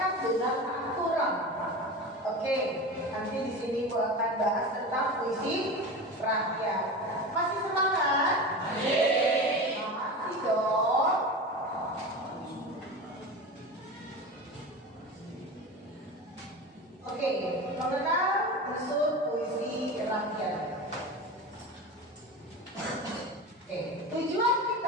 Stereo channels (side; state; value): both; normal; correlation 0.27